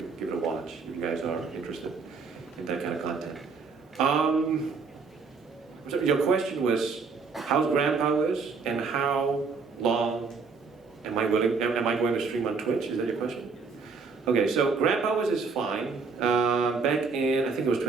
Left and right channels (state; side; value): quieter; left; 4.8 dB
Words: give it a watch if you guys are interested in that kind of content. So your question was, how's GrandPowers and how long am I going to stream on Twitch? Is that your question? Okay, so GrandPowers is fine. Back in, I think it was